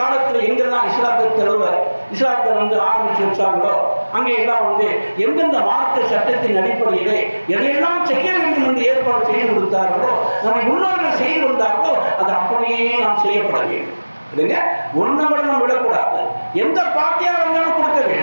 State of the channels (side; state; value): both; inverted; correlation -1.00